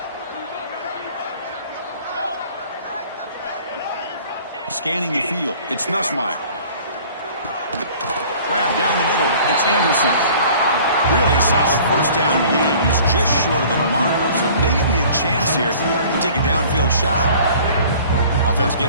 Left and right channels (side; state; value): both; inverted; correlation -0.49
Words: scanning the field. It's Nussmeier. Grab down the middle. It's Anderson. Really solid first down gain. He's just short of the marker, so maybe a chance here to take a downfield shot. Offense